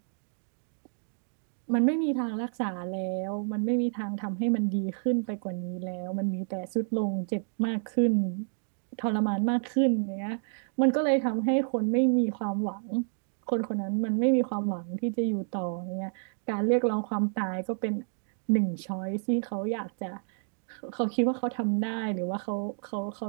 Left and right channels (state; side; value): silent; left; 58 dB below the other